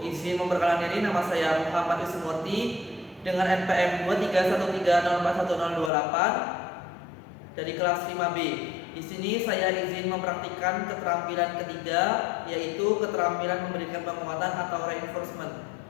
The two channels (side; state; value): right; drops out; at 5.9 s